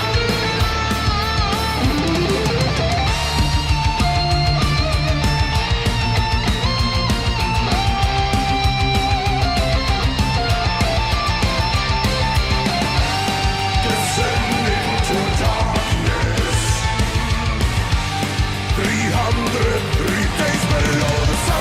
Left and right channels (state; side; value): identical; both; correlation 1.00